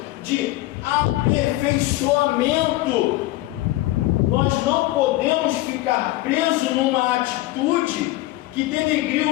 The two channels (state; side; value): quieter; right; 17.7 dB